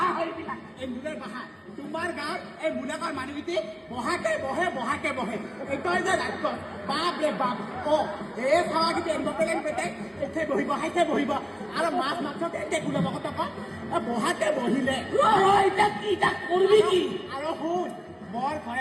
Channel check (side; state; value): both; identical; correlation 1.00